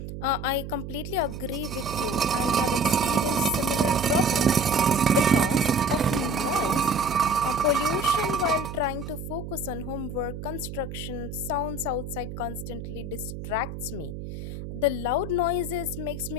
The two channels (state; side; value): noise; right; hum, 8 dB below the sound